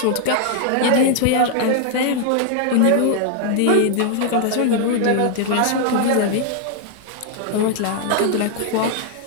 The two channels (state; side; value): different; both; correlation 0.00